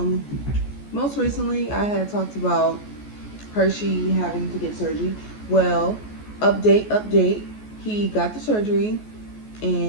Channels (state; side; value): late; right; 14 ms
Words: Most recently I had talked about Hershey having to get surgery. Well, update. He got the surgery